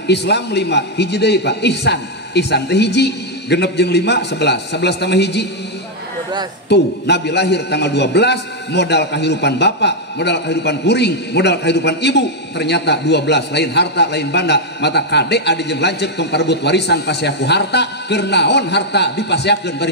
Islam 5 hiji deui Pak ihsan teh hiji genep jeung 5 11 tambah hiji 12 tuh Nabi lahir tanggal 12 modal kehidupan bapak modal kehidupan kuring modal kehidupan ibu ternyata 12 lain harta lain banda mata kade adi jeung lanceuk tong parebut warisan pasiaku harta keur naon harta dipasiakeun bari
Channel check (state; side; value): normal; both; correlation -0.01